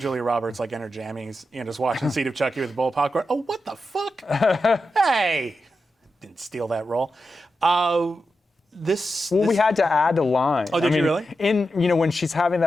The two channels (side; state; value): both; normal; correlation 0.89